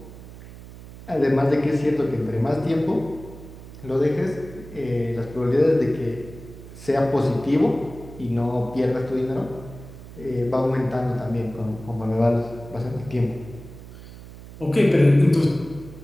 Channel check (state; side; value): noise; right; hum, 16 dB below the sound